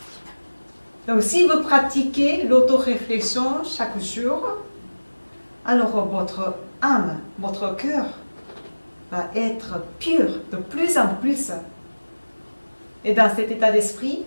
Donc, si vous pratiquez l'autoréflexion chaque jour, alors votre âme, votre cœur va être pur de plus en plus. Et dans cet état d'esprit,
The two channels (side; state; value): both; inverted; correlation -1.00